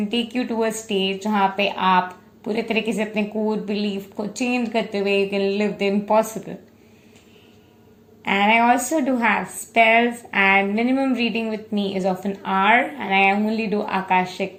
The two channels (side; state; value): both; identical; correlation 1.00